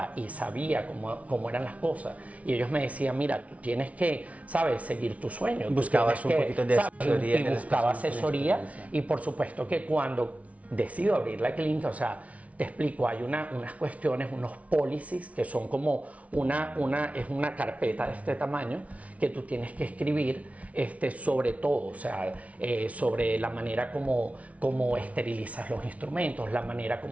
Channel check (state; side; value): late; left; 0.066 ms